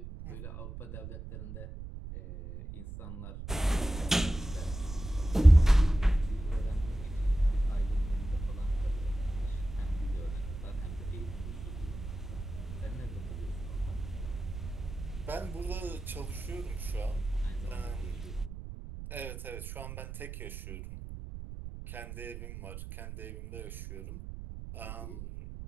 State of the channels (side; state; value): right; noise; rumble, 9 dB below the sound